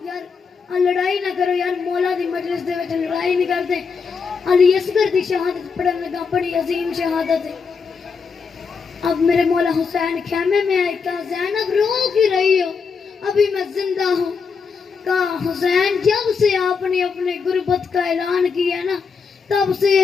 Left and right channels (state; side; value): quieter; right; 5.5 dB